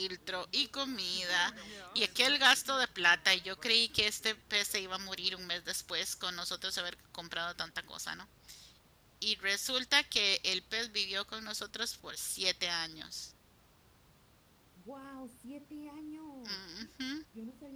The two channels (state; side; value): identical; both; correlation 1.00